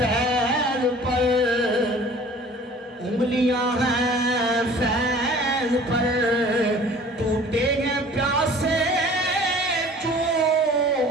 پر, انگلیاں ہیں فیض پر, ٹوٹے ہیں پیاسے چوم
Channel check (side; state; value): both; normal; correlation 0.47